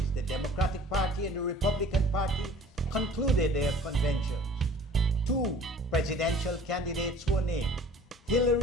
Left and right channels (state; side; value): normal; both; correlation 0.48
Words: the Democratic Party and the Republican Party, concluded their conventions. Two presidential candidates were named.